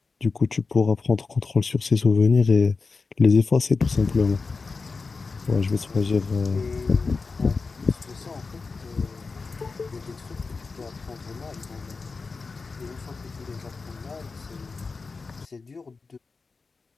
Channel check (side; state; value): right; quieter; 4.3 dB